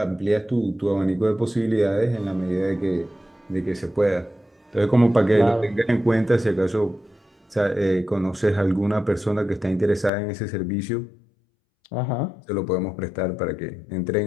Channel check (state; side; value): drops out; right; at 10.1 s